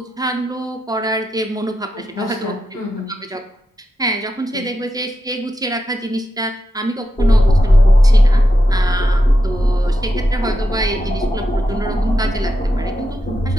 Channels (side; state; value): both; normal; correlation 0.87